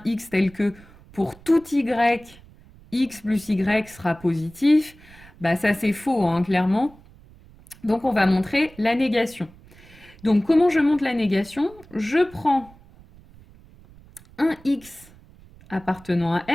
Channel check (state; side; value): noise; right; rumble, 24 dB below the sound